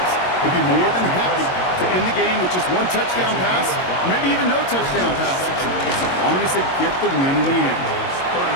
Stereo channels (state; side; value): late; right; 22 ms